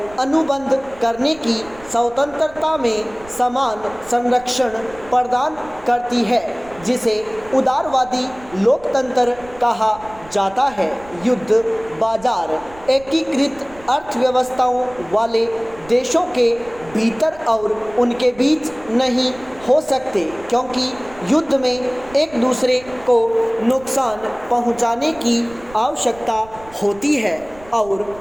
अनुबंध करने की स्वतंत्रता में समान संरक्षण प्रदान करती है, जिसे उदारवादी लोकतंत्र कहा जाता है। युद्ध बाजार एकीकृत अर्थव्यवस्थाओं वाले देशों के भीतर और उनके बीच नहीं हो सकते, क्योंकि युद्ध में एक दूसरे को नुकसान पहुंचाने की आवश्यकता होती है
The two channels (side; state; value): right; noise; rumble, 21 dB below the sound